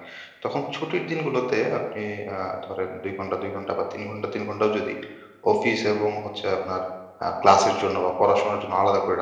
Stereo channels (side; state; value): both; identical; correlation 1.00